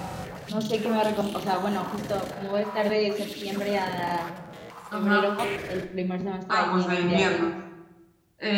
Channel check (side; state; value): both; identical; correlation 1.00